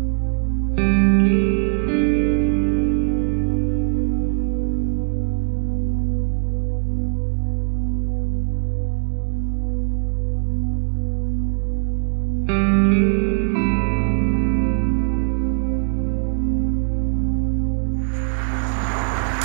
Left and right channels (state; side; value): silent; left; digital silence